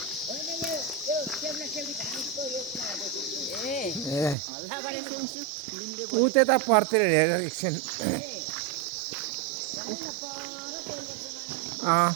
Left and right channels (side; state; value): left; drops out; at 4.4 s